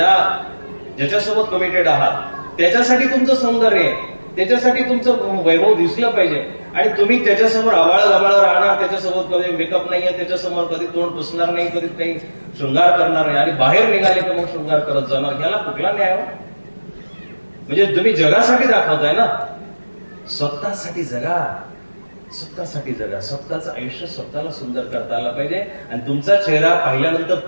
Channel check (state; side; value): inverted; both; correlation -1.00